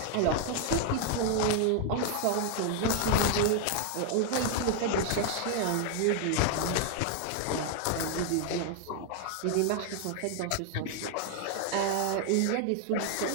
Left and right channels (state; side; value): different; both; correlation 0.00